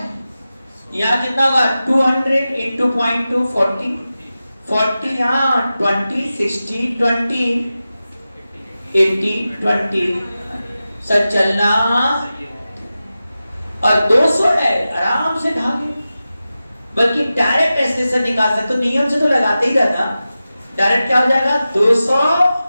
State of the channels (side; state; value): both; inverted; correlation -0.94